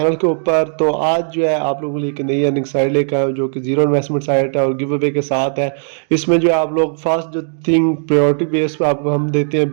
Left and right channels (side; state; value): left; silent; digital silence